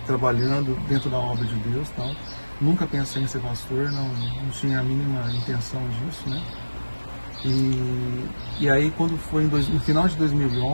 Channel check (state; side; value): inverted; both; correlation -1.00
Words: trabalhando dentro da obra de Deus, tal. Nunca pensei em ser pastor, não tinha a mínima intenção disso, né? E aí quando foi no final de